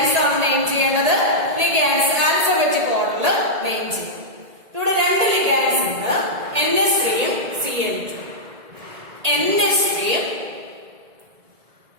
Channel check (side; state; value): left; late; 1.8 ms